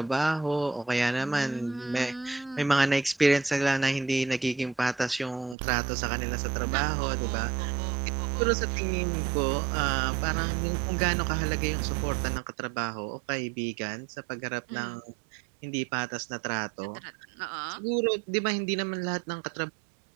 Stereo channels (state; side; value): drops out; left; at 5.6 s